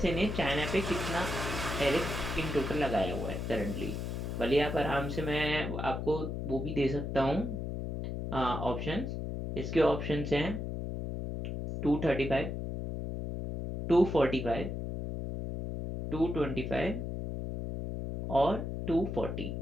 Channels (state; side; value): noise; left; hum, 4 dB below the sound